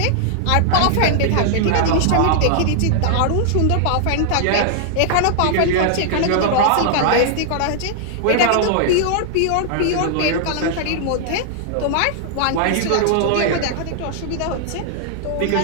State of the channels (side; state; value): both; different; correlation -0.01